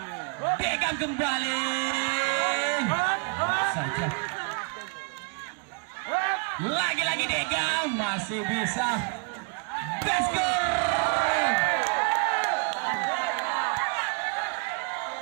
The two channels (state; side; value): quieter; left; 37.0 dB